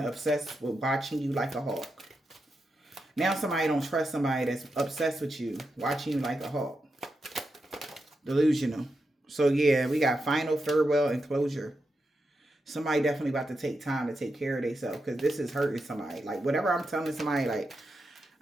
obsessed with watching you like a hawk. Now somebody don't trust somebody that's obsessed with you, watching you like a hawk. Delusional. So yeah, we got final, farewell, and closure. Somebody definitely about to take time to take care of themselves, because this is hurting somebody. Like, whatever I'm telling somebody, like,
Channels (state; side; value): normal; both; correlation 0.87